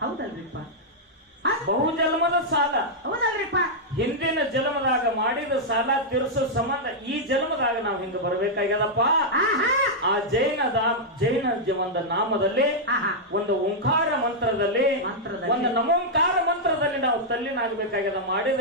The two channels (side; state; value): both; normal; correlation -0.06